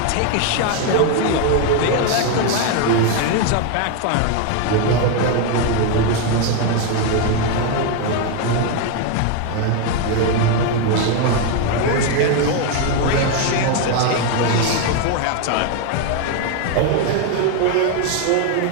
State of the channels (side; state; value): both; different; correlation 0.01